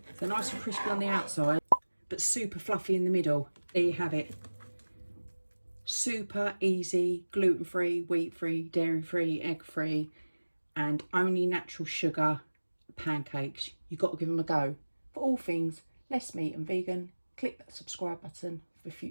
They're nice and crispy on the outside, but super fluffy in the middle. There you have it. Super easy, gluten-free, wheat-free, dairy-free, egg-free, and only natural sugar pancakes. You've got to give them a go. For all things less meat and vegan, click that subscribe button for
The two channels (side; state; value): both; inverted; correlation -1.00